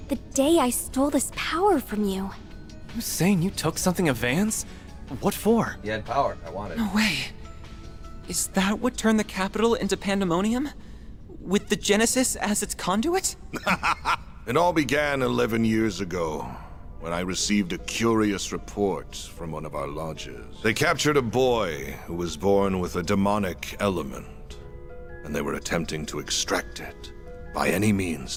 the day I stole this power from you? You saying you took something of Van's? What for? You had power. I wanted. No way. Is that what turned the capital into pandemonium? With the Genesis as its conduit? It all began 11 years ago, when I received a curious report from one of our lodges. They captured a boy who was born with a demonic element, and they were attempting to extract it by any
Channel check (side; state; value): both; identical; correlation 1.00